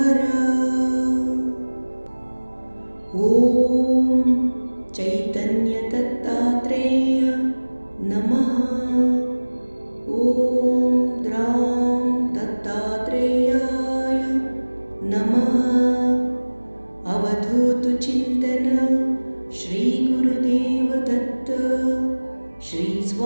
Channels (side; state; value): both; inverted; correlation -1.00